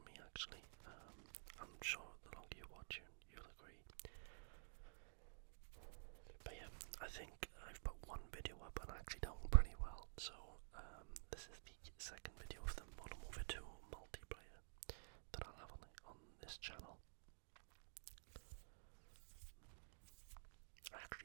me actually. I'm sure the longer you watch it, you'll agree. But yeah, I think I've put one video up and actually done pretty well. So this is the second video of the Modern Warfare 2 multiplayer that I'll have on this channel. I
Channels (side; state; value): left; silent; digital silence